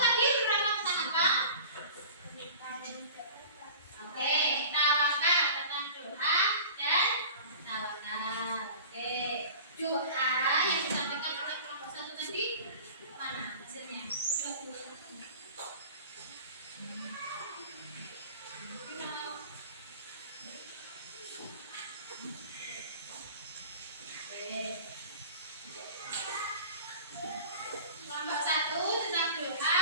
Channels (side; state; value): both; inverted; correlation -0.41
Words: berapa tentang apa? Oke, tawakal tentang doa dan tawakal. Oke, doa yang disampaikan oleh kelompok 1 tadi mana hasilnya? Kelompok 1 tentang